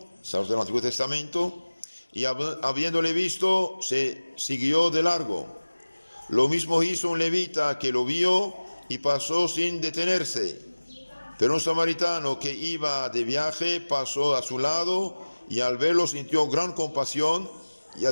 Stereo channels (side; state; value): both; inverted; correlation -1.00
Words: sacerdote del Antiguo Testamento, y habiéndole visto, se siguió de largo. Lo mismo hizo un levita que lo vio y pasó sin detenerse. Pero un samaritano que iba de viaje pasó a su lado y al verlo sintió gran compasión, y